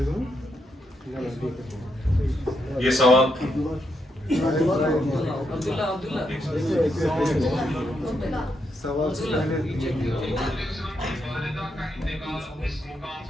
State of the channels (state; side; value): normal; both; correlation 0.80